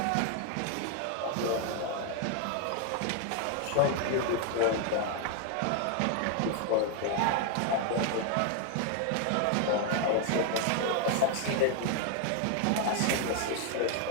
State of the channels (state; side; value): different; both; correlation 0.00